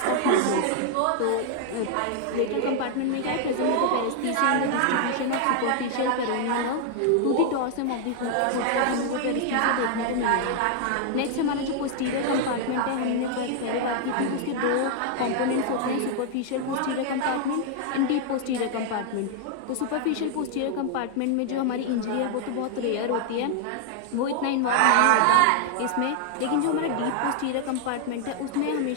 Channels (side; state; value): both; different; correlation 0.00